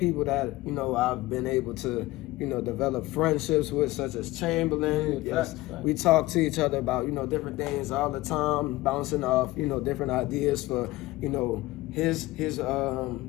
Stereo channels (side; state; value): right; quieter; 18.8 dB